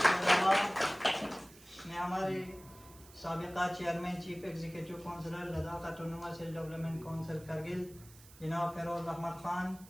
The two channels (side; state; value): right; noise; hiss, 21 dB below the sound